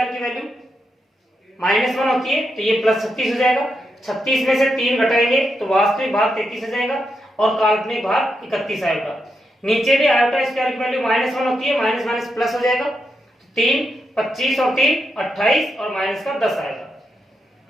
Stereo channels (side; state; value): both; normal; correlation 0.84